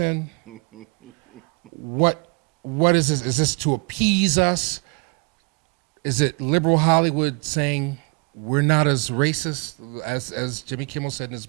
What is this? Is this to appease us? Is it liberal Hollywood saying we're not as racist as Jimmy Kimmel said in his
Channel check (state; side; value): quieter; left; 33.2 dB